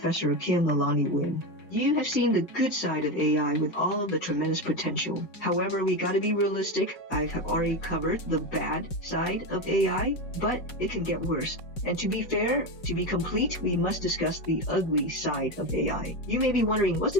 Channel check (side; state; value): right; late; 5.4 ms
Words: Kim Lalani Win. You have seen the good side of AI with all of the tremendous potential. However, we gotta be realistic. I have already covered the bad side of AI, but it can get worse. And to be fair, to be complete, we must discuss the ugly side of AI. You may be wondering, what's